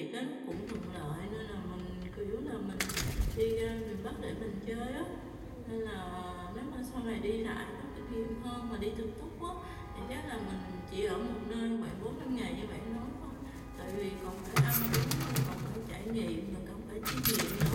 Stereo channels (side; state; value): both; identical; correlation 1.00